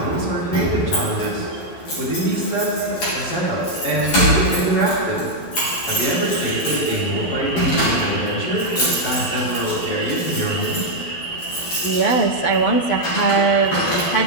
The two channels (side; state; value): right; late; 12 ms